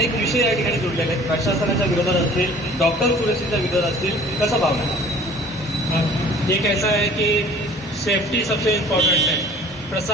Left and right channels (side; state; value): both; normal; correlation 0.49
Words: विषय या ठिकाणी जुळलेले आहेत. प्रशासनाच्या विरोधात असतील, डॉक्टर सुरक्षेच्या विरोधात असतील, कसं पाहणार? एक ऐसा है कि सेफ्टी सबसे इम्पोर्टेंट है.